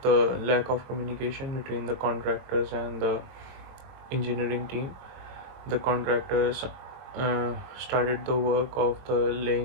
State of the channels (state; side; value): late; left; 22 ms